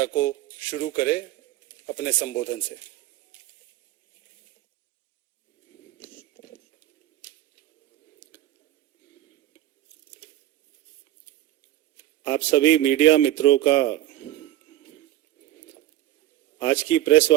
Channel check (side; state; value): left; quieter; 14.0 dB